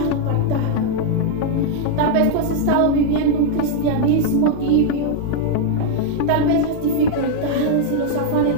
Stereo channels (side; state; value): both; different; correlation -0.01